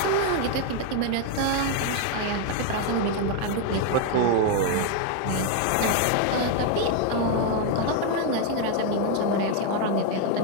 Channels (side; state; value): both; different; correlation 0.01